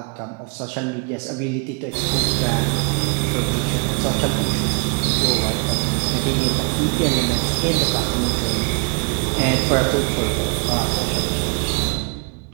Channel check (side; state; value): left; quieter; 34.3 dB